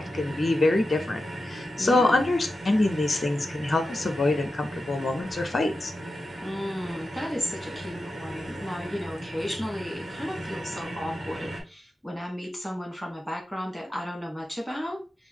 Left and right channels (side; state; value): both; normal; correlation 0.91